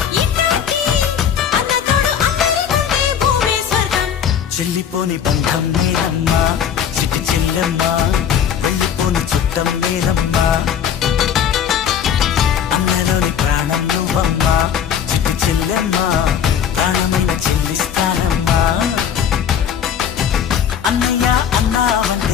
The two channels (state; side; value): quieter; right; 8.5 dB